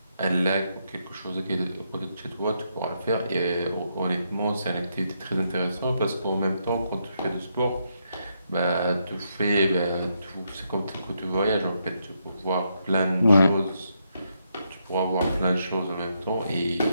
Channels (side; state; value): both; inverted; correlation -0.79